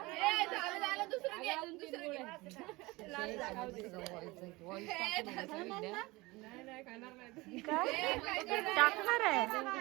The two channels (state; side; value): quieter; left; 22.2 dB